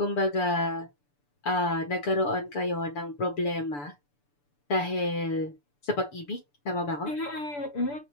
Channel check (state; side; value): late; right; 6.9 ms